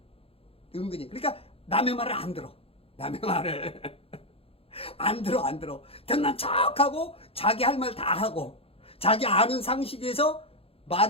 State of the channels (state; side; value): late; right; 0.28 ms